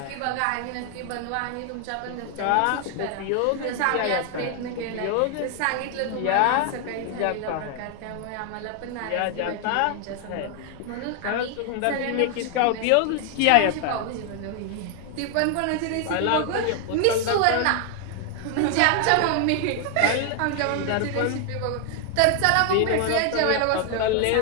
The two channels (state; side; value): different; both; correlation 0.00